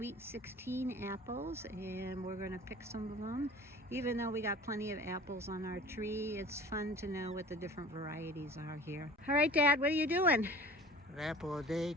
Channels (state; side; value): normal; both; correlation 0.43